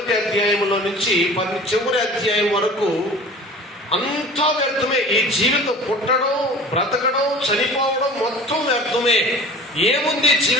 అధ్యాయంలో నుంచి చివరి అధ్యాయం వరకు అంతా వ్యర్థమే. ఈ జీవితం, పుట్టడం, బ్రతకడం, చనిపోవడం మొత్తం వ్యర్థమే. ఏముంది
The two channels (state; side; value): normal; both; correlation 0.42